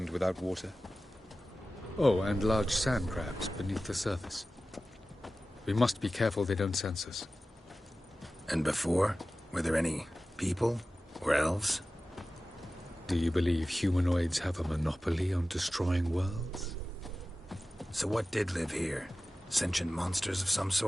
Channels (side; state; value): both; normal; correlation 0.95